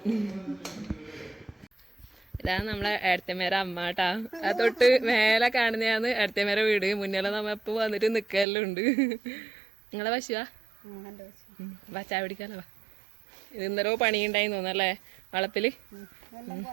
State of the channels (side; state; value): left; drops out; at 8.5 s